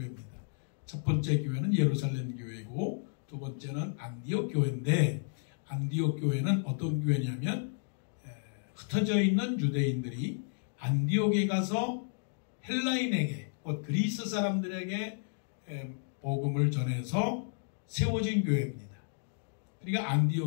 첫 번째 교회는 예루살렘 교회고 두 번째는 안디옥 교회인데, 안디옥 교회는 어떤 교회냐면 흩어져 있는 유대인들이 안디옥에 가서 헬라인에게, 곧 그리스 사람들에게 복음을 전해서 세워진 교회입니다. 그러니까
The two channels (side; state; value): right; silent; digital silence